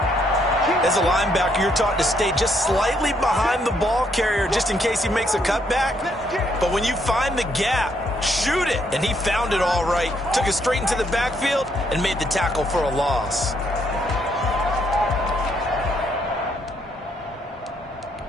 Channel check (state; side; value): normal; both; correlation 0.72